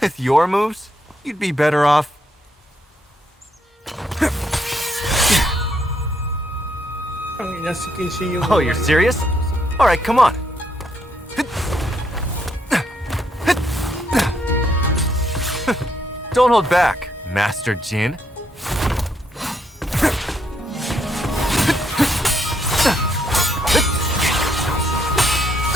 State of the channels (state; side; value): normal; both; correlation 0.75